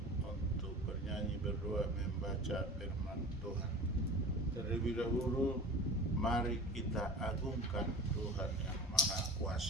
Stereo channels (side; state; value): both; normal; correlation 0.36